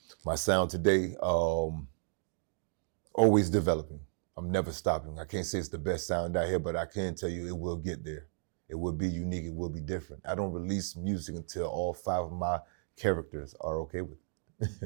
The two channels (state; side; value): silent; left; digital silence